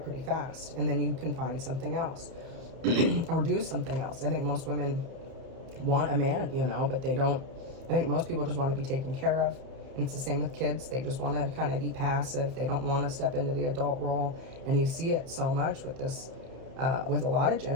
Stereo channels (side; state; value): left; late; 31 ms